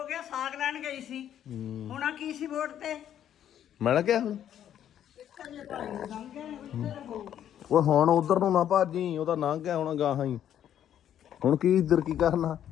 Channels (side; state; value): right; quieter; 10.3 dB